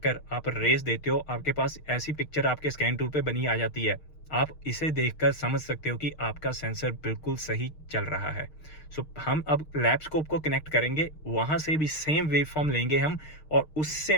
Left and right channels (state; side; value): late; right; 6.5 ms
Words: आप रेस देते हो, आपके पास ऐसी पिक्चर आपके स्कैन टूल पे बनी आ जाती है, आप इसे देखकर समझ सकते हो कि आपका सेंसर बिल्कुल सही चल रहा है। सो हम अब लैब स्कोप को कनेक्ट करेंगे, वहां से भी सेम वेव फॉर्म लेंगे हम, और उससे